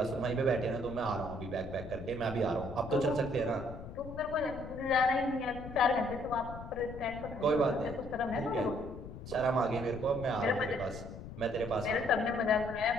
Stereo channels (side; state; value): left; noise; rumble, 12 dB below the sound